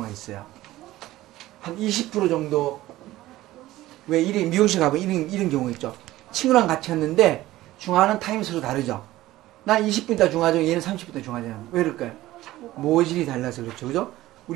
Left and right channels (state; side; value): quieter; left; 16.2 dB